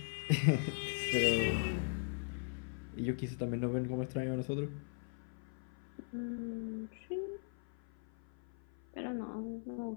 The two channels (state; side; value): silent; right; 51 dB below the other